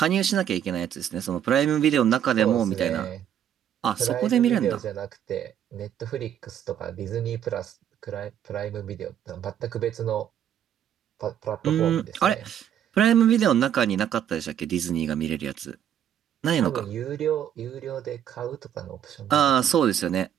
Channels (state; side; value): quieter; left; 9.9 dB